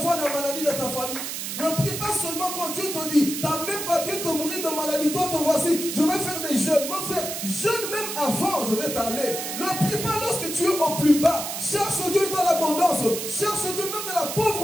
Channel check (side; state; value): right; noise; hiss, 5 dB below the sound